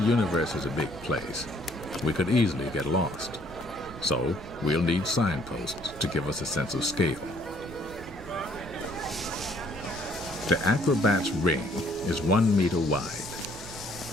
is a big place, we could easily get lost. So we'll need signposts to give us a sense of scale. The acrobat's ring is 1 meter wide.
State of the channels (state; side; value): noise; right; hum, 19 dB below the sound